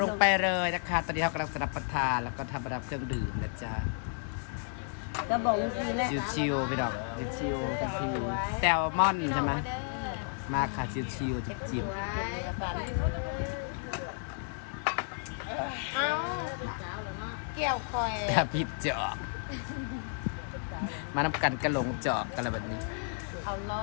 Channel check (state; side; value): silent; right; 56 dB below the other